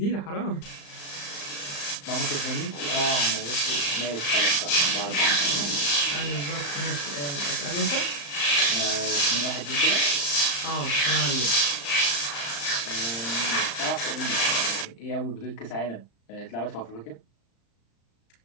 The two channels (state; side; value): late; right; 35 ms